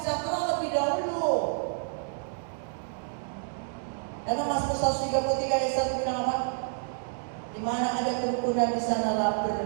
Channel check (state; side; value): silent; left; digital silence